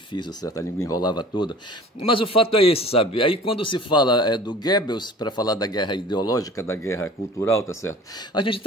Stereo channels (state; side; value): normal; both; correlation 0.44